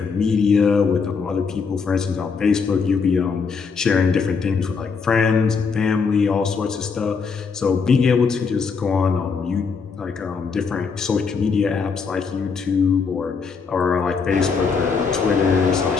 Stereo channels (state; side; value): quieter; right; 5.4 dB